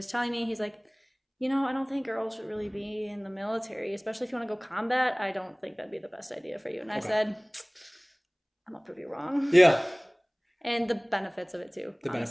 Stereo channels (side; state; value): both; identical; correlation 1.00